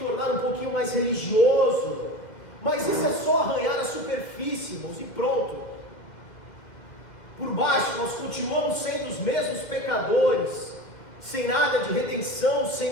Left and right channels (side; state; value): right; late; 2.1 ms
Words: um pouquinho mais religioso. Mas isso é só arranhar a superfície, irmãos, e pronto. Por baixo nós continuamos sendo os mesmos pecadores, sem nada de redenção,